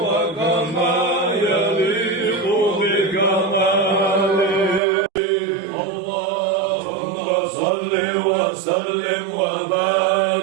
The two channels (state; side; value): drops out; left; at 4.8 s